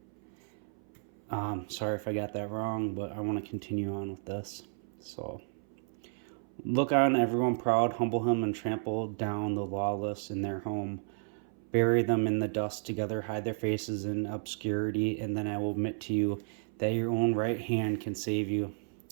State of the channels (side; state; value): left; silent; 56 dB below the other